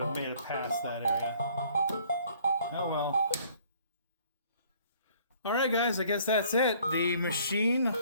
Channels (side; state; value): both; inverted; correlation -0.58